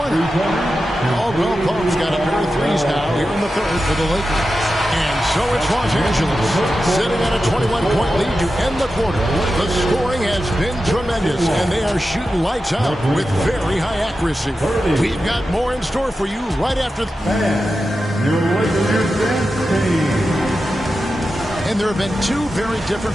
Caldwell Pope's got a pair of threes now here in the third for the Lakers. And so it's Los Angeles sitting at a 21-point lead to end the quarter. The scoring has been tremendous, and they are shooting lights out with very high accuracy. We've got more in store for you right after. Your Lakers dance team. And there have been 2 very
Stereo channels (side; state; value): both; normal; correlation 0.91